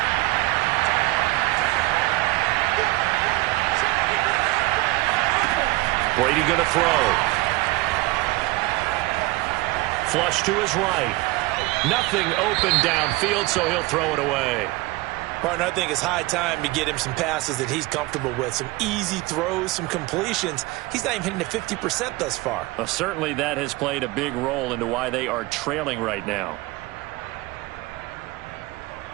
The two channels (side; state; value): left; quieter; 20.8 dB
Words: Brady going to throw. Flush to his right. Nothing open downfield, so he'll throw it away. Partner, I think it's high time to get him some passes that he's comfortable with. Some easy throws, some completions. He's not even hitting the 50% thus far. Well, certainly that has played a big role into why they are trailing right now.